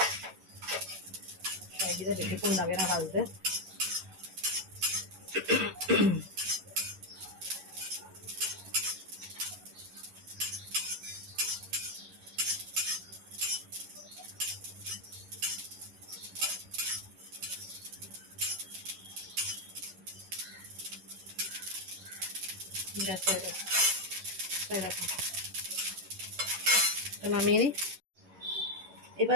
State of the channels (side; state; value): left; late; 11 ms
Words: শাহি জিরা বেশিক্ষণ লাগে না ভাজতে। গ্যাস হয়ে গেছে, হয়ে গেছে, নামিয়ে নিই।